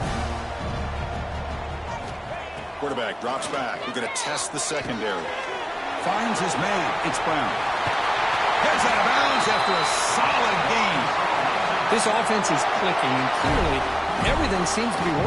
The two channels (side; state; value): both; identical; correlation 1.00